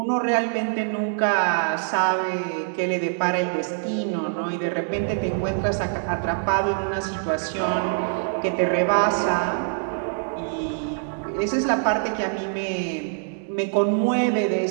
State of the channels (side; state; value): left; silent; digital silence